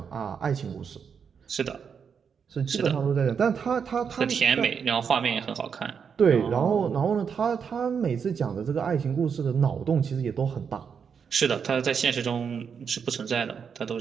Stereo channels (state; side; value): quieter; left; 6.7 dB